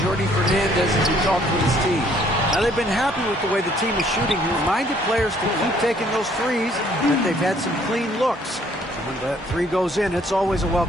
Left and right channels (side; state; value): both; normal; correlation 0.63